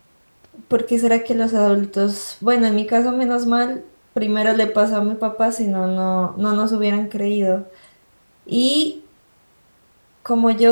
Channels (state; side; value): inverted; both; correlation -1.00